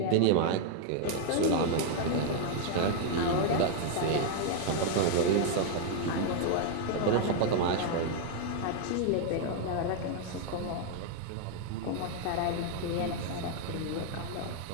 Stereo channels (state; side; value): different; both; correlation 0.00